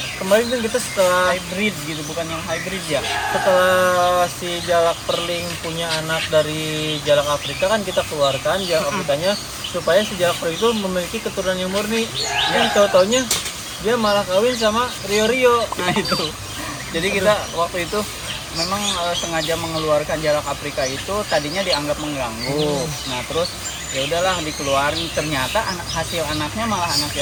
kemarin kan kita setelah hybrid gitu, bukan yang hybrid ya. Setelah si jalak perling punya anak dari jalak Afrika kan kita keluarkan jalak Afrikanya supaya si jalak perling itu memiliki keturunan yang murni. Yang tahu-taunya dia malah kawin sama Rio-Rio. Nah itu. Jadi kita waktu itu memang sengaja mengeluarkan jalak Afrika itu tadinya dianggap mengganggu. Nah terus ya udahlah dikeluarin, ternyata hasil anaknya malah anak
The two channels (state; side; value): identical; both; correlation 1.00